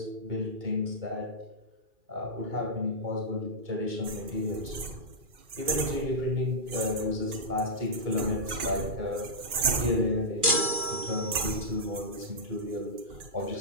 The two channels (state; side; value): late; left; 2.4 ms